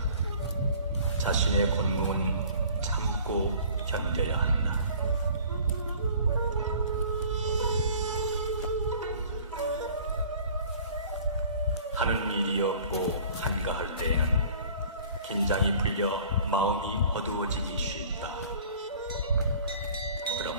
자신의 곤궁은 참고 견뎌야 한다. 하는 일이 없고 한가할 때에는 긴장이 풀려 마음이 어두워지기 쉽다.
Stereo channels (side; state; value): both; inverted; correlation -0.49